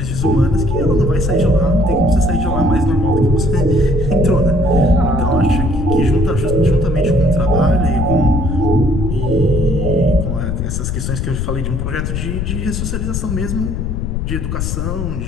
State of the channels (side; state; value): left; noise; rumble, 2 dB below the sound